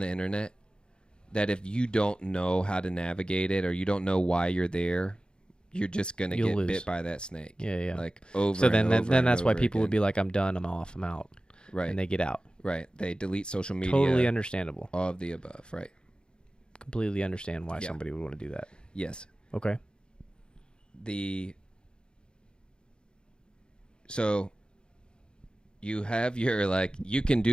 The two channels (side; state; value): right; late; 0.050 ms